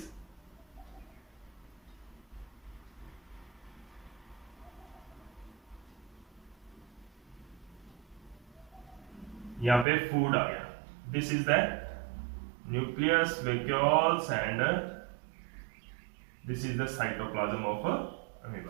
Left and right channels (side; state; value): left; drops out; at 9.9 s